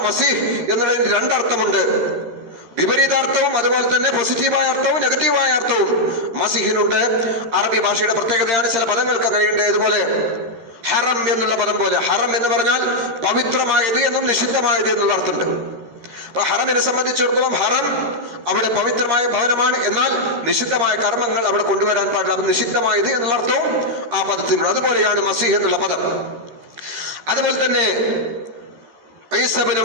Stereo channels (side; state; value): left; late; 13 ms